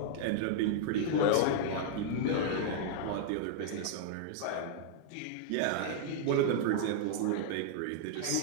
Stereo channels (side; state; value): both; different; correlation -0.01